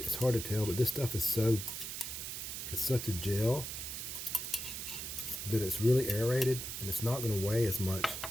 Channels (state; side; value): noise; right; hiss, 6 dB below the sound